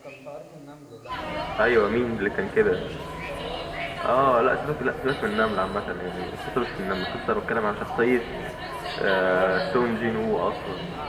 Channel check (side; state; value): both; identical; correlation 1.00